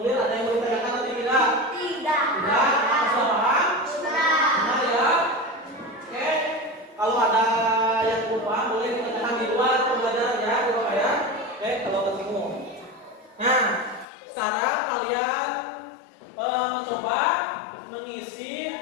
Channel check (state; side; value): drops out; right; at 14.1 s